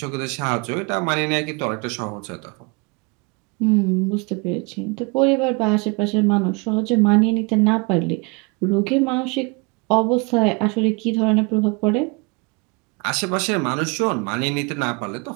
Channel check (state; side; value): quieter; left; 30.0 dB